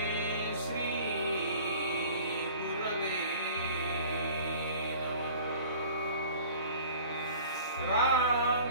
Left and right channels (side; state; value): both; inverted; correlation -0.46